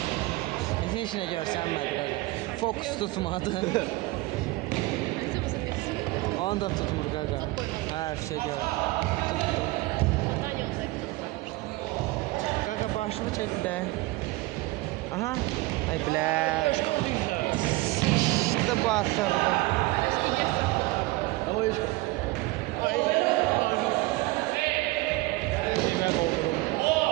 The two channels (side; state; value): left; quieter; 20.9 dB